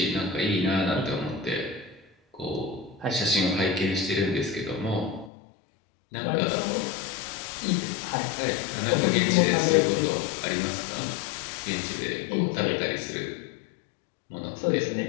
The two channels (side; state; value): right; drops out; at 5.3 s